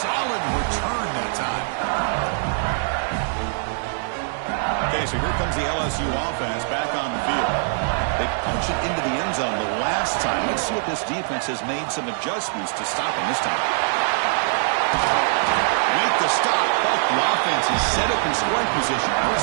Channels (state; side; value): silent; left; 63 dB below the other